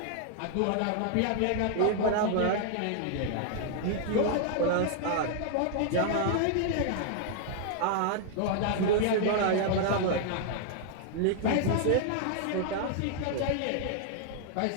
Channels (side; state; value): both; different; correlation -0.01